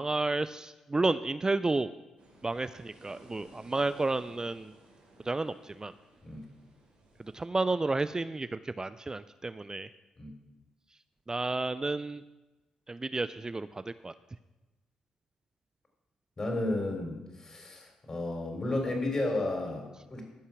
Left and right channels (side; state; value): both; normal; correlation 0.92